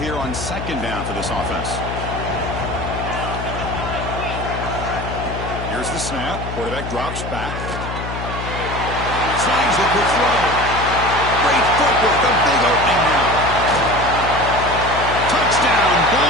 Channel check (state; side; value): noise; left; hum, 7 dB below the sound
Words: on 2nd down for this offense? Here's the snap. Quarterback drops back. Slides with the throw. Great footwork. A big opening now. Touchdown,